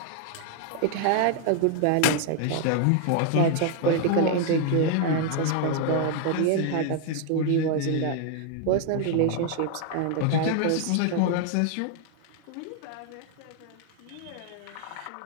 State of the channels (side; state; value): both; different; correlation 0.00